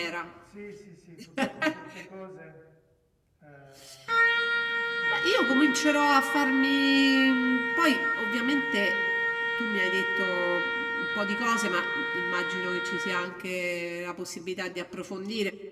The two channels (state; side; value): identical; both; correlation 1.00